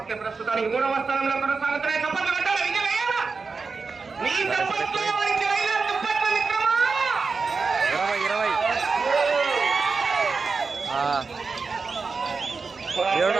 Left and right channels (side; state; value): left; quieter; 4.6 dB